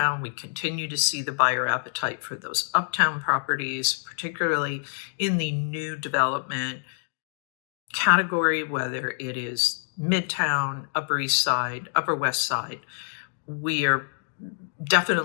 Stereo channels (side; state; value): right; silent; digital silence